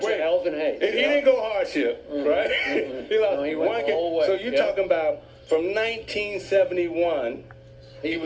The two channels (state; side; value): identical; both; correlation 1.00